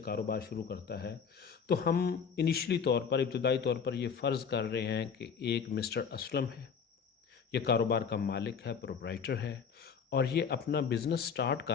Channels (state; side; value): quieter; right; 6.6 dB